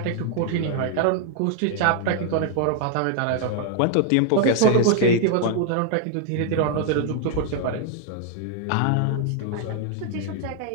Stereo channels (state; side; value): different; both; correlation 0.00